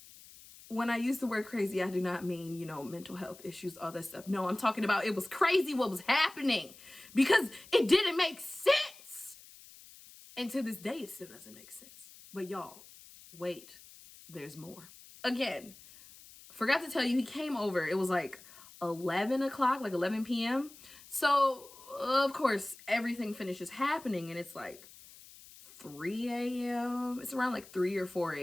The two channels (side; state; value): left; noise; hiss, 20 dB below the sound